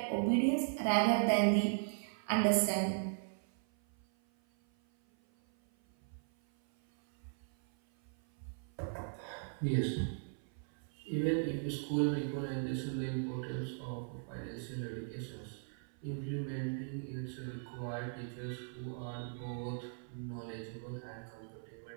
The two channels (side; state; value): left; silent; 52 dB below the other